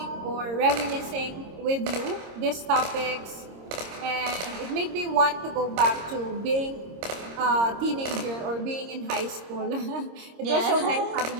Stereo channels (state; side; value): late; left; 26 ms